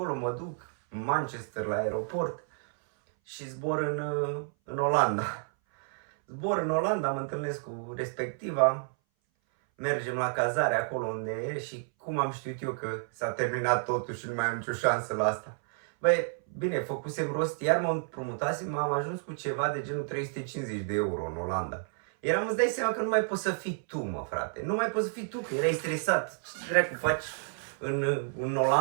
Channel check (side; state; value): left; silent; 58 dB below the other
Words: mă duc în Manchester la aeroport și zbor în Olanda. Zbor în Olanda, mă întâlnesc cu respectiva, mergem la cazare acolo unde e și cum am știut eu că s-a terminat totul și nu mai am nicio șansă la asta. Bine, făcusem rost, iar mă împrumutasem, am ajuns cu ceva de genul 350 de euro în Olanda. Îți dai seama că nu mai poți să fii tu, mă, frate. Nu mai poți să fii tu, că erai stresat. Ce dracu faci în